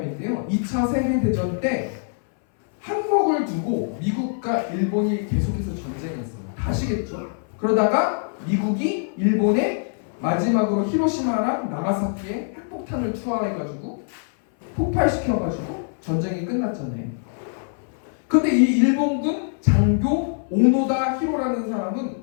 2차 세계대전 때 항목을 두고 미국과 일본이 계속해서 전쟁했어요. 아시겠죠? 그러다가 미국이 일본에 마지막으로 히로시마랑 나가사키에 핵폭탄을 투하해가지고 폭발시켜가지고 전쟁이 끝났잖아요. 근데 이 일본군 장교 오노다 히로라는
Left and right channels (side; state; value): right; silent; 60 dB below the other